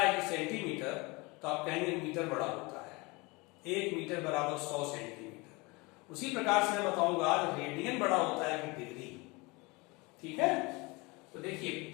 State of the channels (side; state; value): right; quieter; 25.7 dB